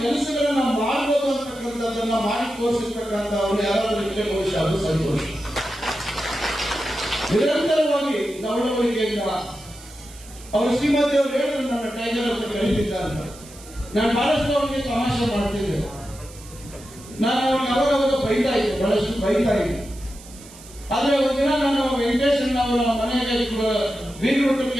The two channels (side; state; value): right; noise; hiss, 19 dB below the sound